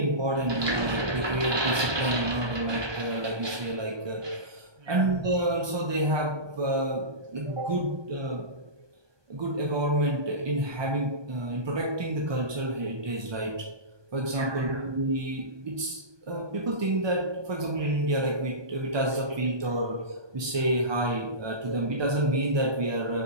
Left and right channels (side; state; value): left; late; 1.2 ms